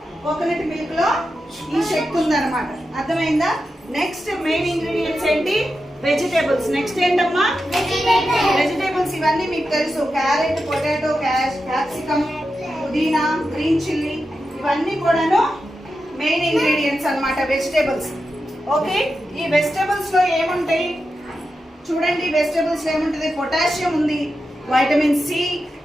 కోకోనట్ మిల్క్ లో ఈ శక్తి ఉందన్నమాట. అర్థమైందా? నెక్స్ట్ మెయిన్ ఇంగ్రీడియంట్స్ ఏంటి? వెజిటేబుల్స్. నెక్స్ట్ ఏంటమ్మా? వెజిటేబుల్స్. ఇవన్నీ మీకు తెలుసు. క్యారెట్, పొటాటో, క్యాప్సికమ్, పుదీనా, గ్రీన్ చిల్లీ, ఇవన్నీ కూడాను మెయిన్ ఇంగ్రీడియంట్స్ అన్నమాట, వెజిటేబుల్స్. ఓకే, ఈ వెజిటేబుల్స్ లో ఏముంటాయి చూడండి. వెజిటేబుల్స్ ఏముంటుంది? పొటాషియం ఉంది, vitamin C,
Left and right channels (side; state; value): both; normal; correlation 0.90